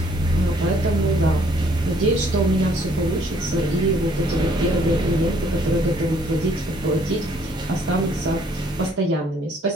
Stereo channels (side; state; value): both; normal; correlation 0.63